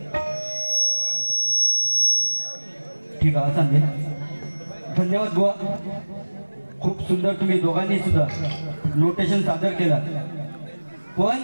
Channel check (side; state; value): both; inverted; correlation -1.00